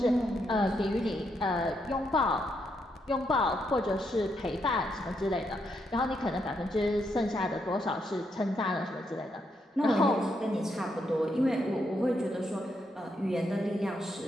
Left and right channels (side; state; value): both; normal; correlation 0.79